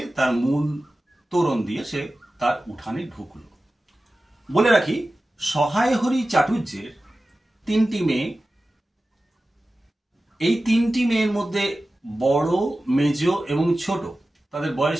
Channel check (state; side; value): normal; both; correlation 0.95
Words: তার মূল তোরণ দিয়ে সে তার উঠানে ঢুকল। বলে রাখি, সহায় হরি চাটুর্যের 3টি মেয়ে। এই 3টি মেয়ের মধ্যে বড়, মেজ এবং ছোট, তাদের বয়স